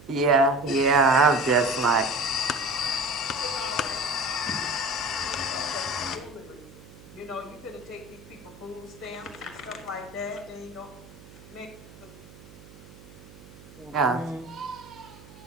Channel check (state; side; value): noise; right; hum, 20 dB below the sound